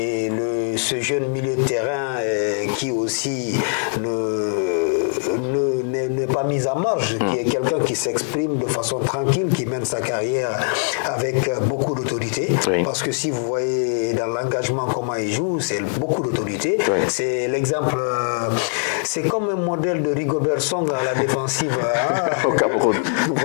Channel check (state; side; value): silent; right; 60 dB below the other